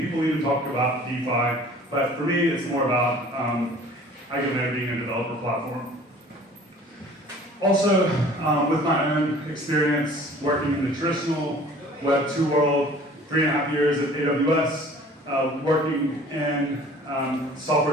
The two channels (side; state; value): both; normal; correlation 0.49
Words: even talk about DeFi. But for me, it's more about EigenLayer being a developer platform. Also, with my own experience working in the traditional Web 2 world, 3.5 years at AWS, working in